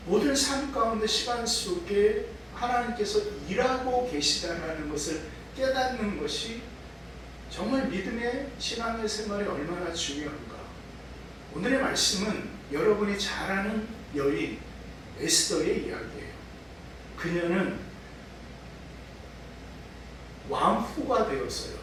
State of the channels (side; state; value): both; identical; correlation 1.00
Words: 모든 삶 가운데 시간 속에 하나님께서 일하고 계시다는 것을 깨닫는 것이 정말 믿음의 신앙의 생활이 얼마나 중요한가. 오늘의 말씀은 여러분이 잘 아는 여인 에스더의 이야기예요. 그녀는 왕후가 되었어요.